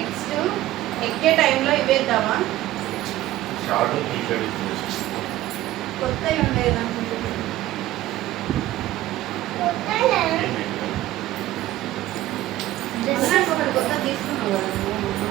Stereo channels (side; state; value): left; quieter; 15.4 dB